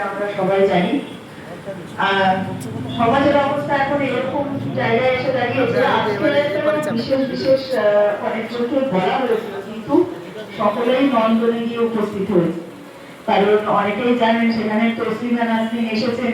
আমরা সবাই জানি। সমাজের অবস্থা এখন এরকম জায়গায় এসে দাঁড়িয়েছে। বিশেষ বিশেষ অনেকজনকে বলা হয়েছিল, কিন্তু সকলেই নন্দনে গিয়ে উপস্থিত হয়েছে। কারণ অনেকেই জানেন সেখানে তসলিমা নাসরিন এসেছেন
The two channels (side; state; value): both; identical; correlation 1.00